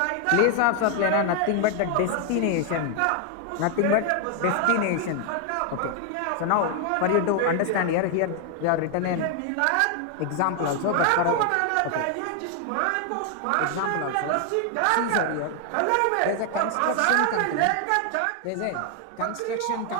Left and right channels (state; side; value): different; both; correlation 0.00